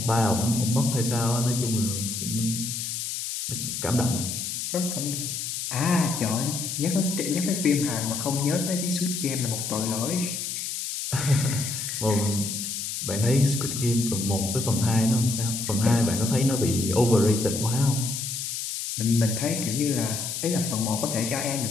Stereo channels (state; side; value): noise; left; hiss, 4 dB below the sound